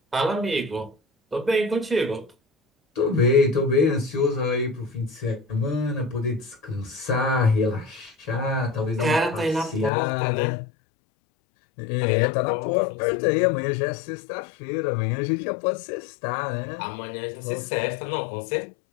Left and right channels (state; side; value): drops out; right; at 9.9 s